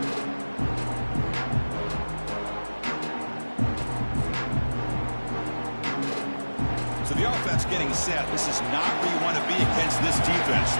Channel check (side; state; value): both; inverted; correlation -1.00